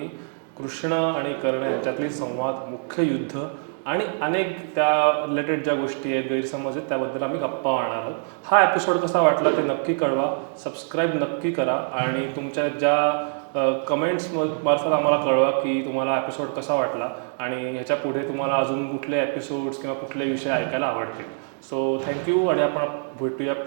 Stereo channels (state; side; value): silent; left; digital silence